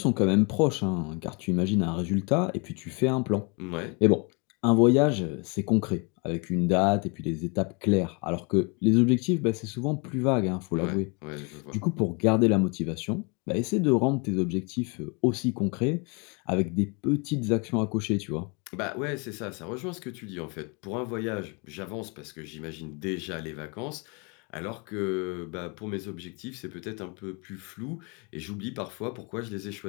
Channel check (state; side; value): quieter; right; 32.4 dB